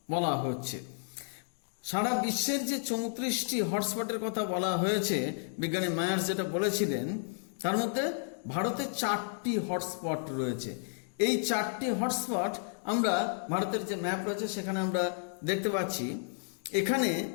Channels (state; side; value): silent; right; digital silence